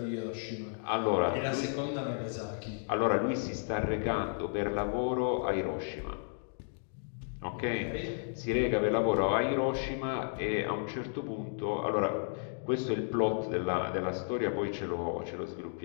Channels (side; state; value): right; silent; digital silence